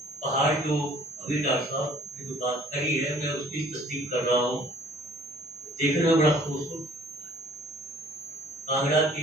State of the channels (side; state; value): both; normal; correlation 0.54